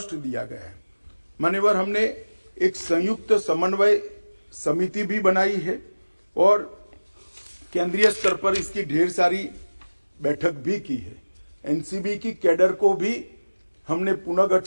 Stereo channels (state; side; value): inverted; both; correlation -1.00